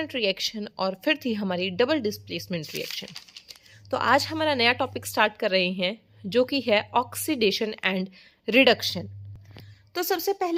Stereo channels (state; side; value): identical; both; correlation 1.00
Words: रिएक्शन और फिर थी हमारी डबल डिस्प्लेसमेंट रिएक्शन। तो आज हमारा नया टॉपिक स्टार्ट कर रहे हैं जो कि है ऑक्सीडेशन एंड रिडक्शन। तो सबसे